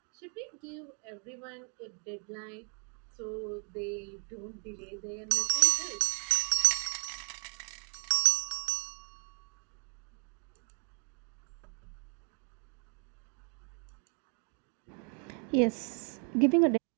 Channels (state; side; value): quieter; left; 38.6 dB